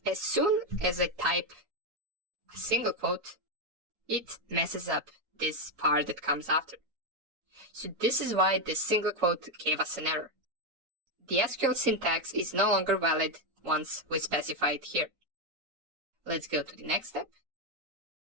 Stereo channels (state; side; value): late; left; 7.1 ms